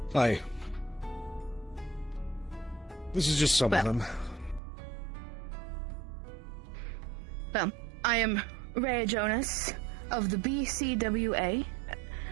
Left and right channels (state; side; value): drops out; left; at 4.6 s